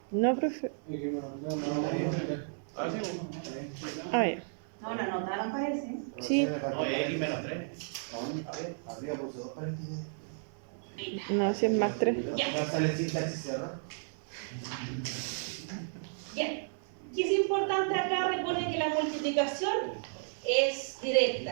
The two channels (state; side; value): silent; left; digital silence